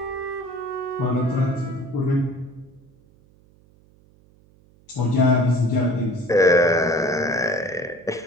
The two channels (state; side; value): noise; right; hum, 30 dB below the sound